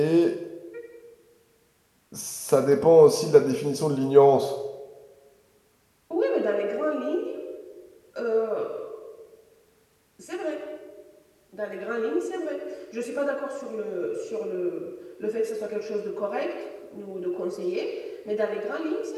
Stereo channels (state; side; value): identical; both; correlation 1.00